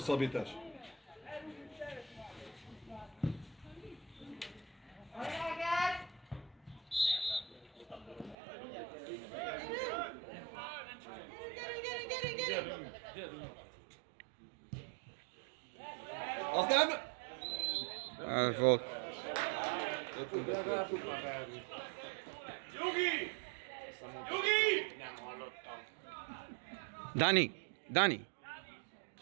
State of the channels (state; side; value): drops out; left; at 8.3 s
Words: Az nem... Ez volt. Nyugi! Nyugi! Dani, Dani.